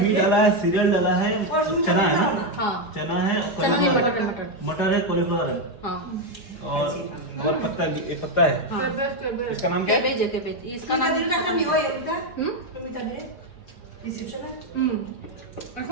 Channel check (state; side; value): late; right; 4.9 ms